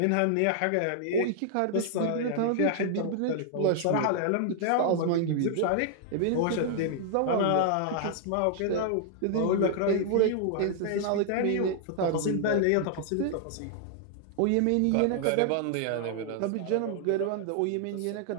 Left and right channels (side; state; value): both; different; correlation -0.01